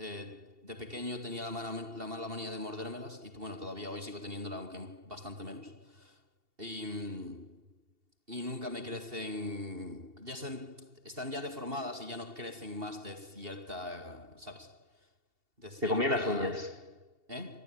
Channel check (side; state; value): left; late; 2.7 ms